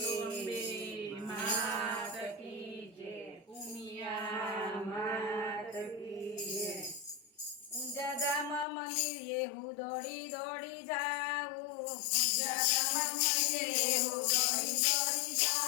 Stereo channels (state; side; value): drops out; right; at 8.7 s